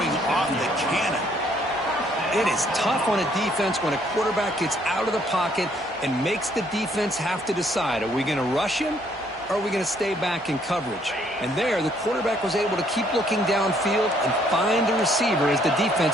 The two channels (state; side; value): normal; both; correlation 0.66